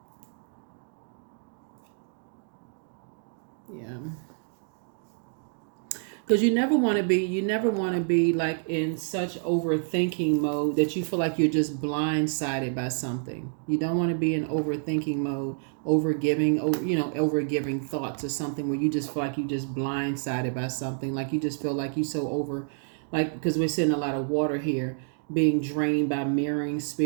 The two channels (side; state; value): left; silent; 59 dB below the other